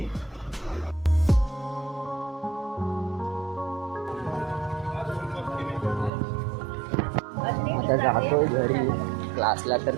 आता जातो घरी. क्लासला तर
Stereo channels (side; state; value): left; drops out; at 6.1 s